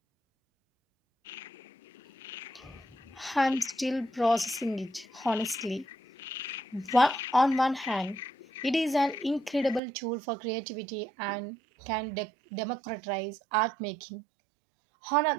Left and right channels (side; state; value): left; drops out; at 9.8 s